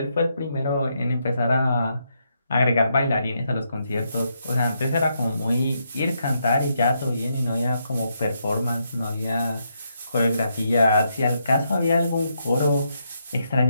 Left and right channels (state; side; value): inverted; both; correlation -0.79